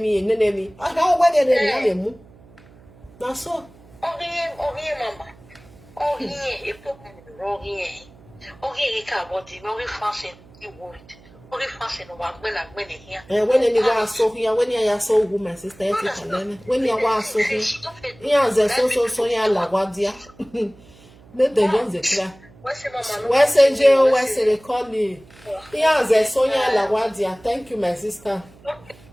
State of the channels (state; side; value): noise; right; hum, 25 dB below the sound